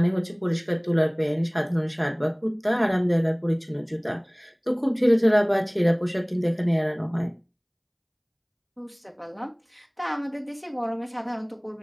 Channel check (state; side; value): identical; both; correlation 1.00